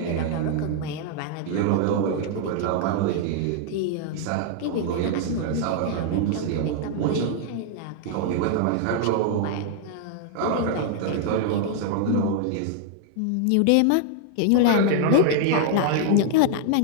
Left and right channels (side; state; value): both; different; correlation 0.00